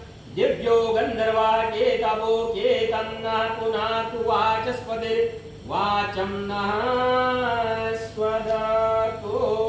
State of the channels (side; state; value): both; identical; correlation 1.00